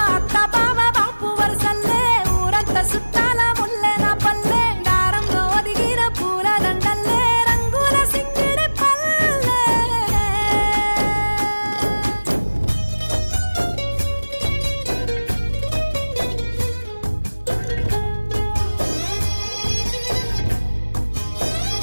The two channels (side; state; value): both; inverted; correlation -1.00